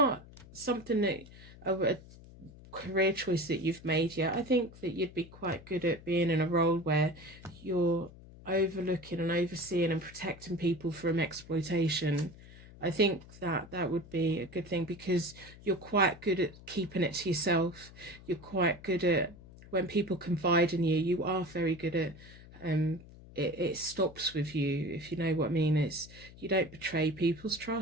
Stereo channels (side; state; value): left; noise; hum, 19 dB below the sound